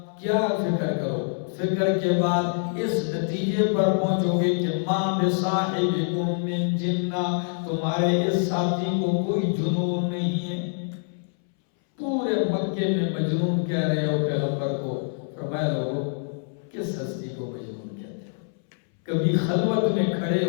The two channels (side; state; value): right; silent; 61 dB below the other